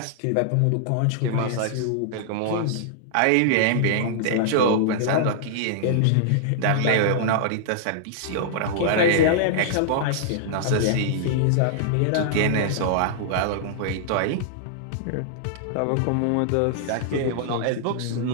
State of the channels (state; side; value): different; both; correlation -0.01